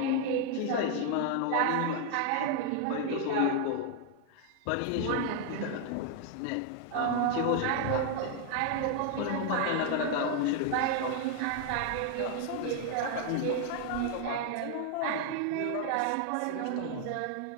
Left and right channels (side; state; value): both; different; correlation 0.00